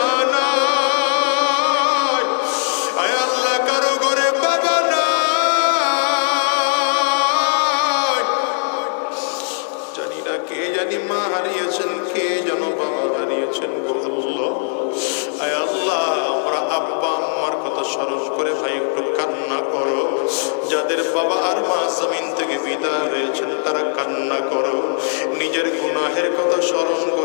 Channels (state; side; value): silent; right; digital silence